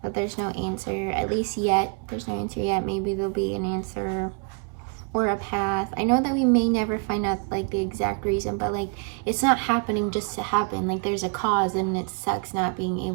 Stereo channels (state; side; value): quieter; left; 38.5 dB